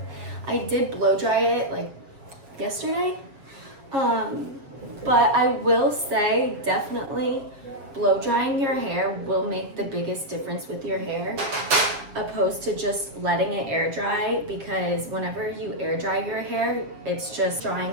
I did blow dry it like yesterday. But I will say, definitely blow drying your hair will make the biggest difference with your hair, opposed to just letting it air dry, because whenever you air dry your hair, it's just drying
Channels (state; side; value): late; left; 7.4 ms